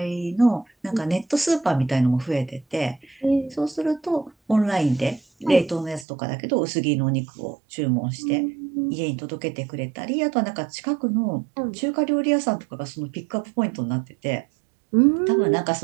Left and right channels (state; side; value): drops out; left; at 6.1 s